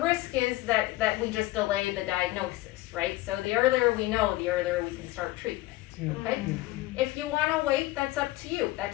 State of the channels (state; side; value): quieter; right; 18.3 dB